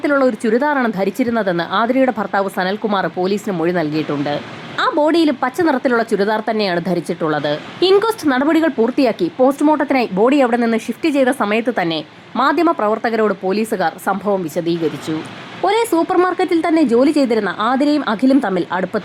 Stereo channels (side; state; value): both; identical; correlation 1.00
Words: ഒരു ചുരിദാറാണ് ധരിച്ചിരുന്നതെന്ന് ആതിരയുടെ ഭർത്താവ് സനൽകുമാർ പോലീസിന് മൊഴി നൽകിയിട്ടുണ്ട്. ആ ബോഡിയിലും പച്ച നിറത്തിലുള്ള ചുരിദാർ തന്നെയാണ് ധരിച്ചിട്ടുള്ളത്. ഇൻക്വസ്റ്റ് നടപടികൾ പൂർത്തിയാക്കി പോസ്റ്റ്മോർട്ടത്തിനായി ബോഡി അവിടെ നിന്ന് ഷിഫ്റ്റ് ചെയ്ത സമയത്ത് തന്നെ മാധ്യമ പ്രവർത്തകരോട് പോലീസുകാർ സംഭവം വിശദീകരിച്ചു. ഒരേ സൂപ്പർ മാർക്കറ്റിൽ തന്നെ ജോലി ചെയ്തിരുന്ന ആതിരയും അഖിലും തമ്മിൽ